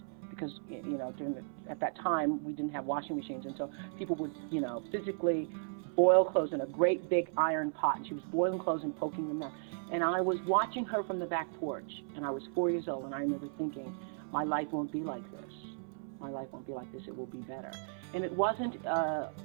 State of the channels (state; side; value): silent; left; 54 dB below the other